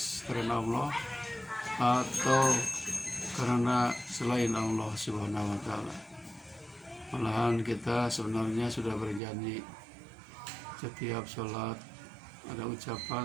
karena Allah atau karena selain Allah Subhanahu wa taala. Malahan kita sebenarnya sudah berjanji setiap sholat ada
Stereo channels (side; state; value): left; drops out; at 9.2 s